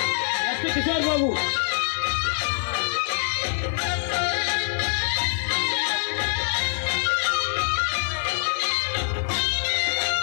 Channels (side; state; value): right; silent; digital silence